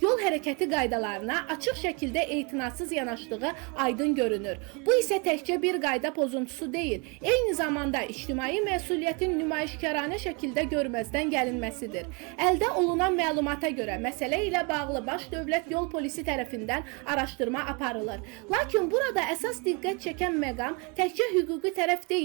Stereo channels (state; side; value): quieter; left; 31.9 dB